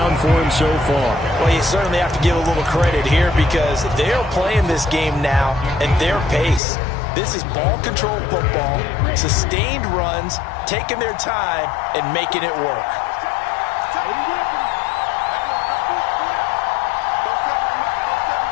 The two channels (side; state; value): right; drops out; at 6.6 s